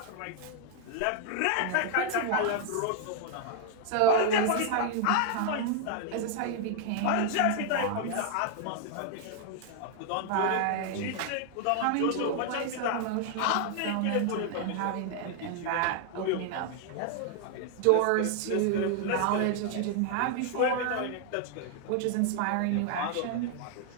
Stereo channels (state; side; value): different; both; correlation 0.00